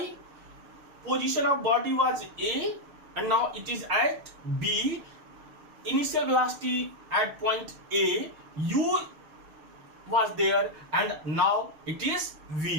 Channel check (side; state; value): left; late; 6.5 ms